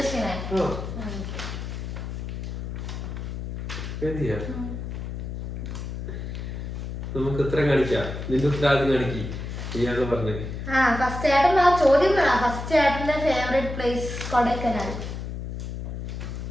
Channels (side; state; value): left; noise; hum, 6 dB below the sound